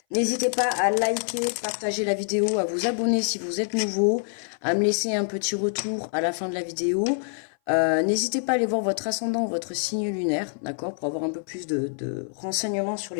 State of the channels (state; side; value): silent; right; 58 dB below the other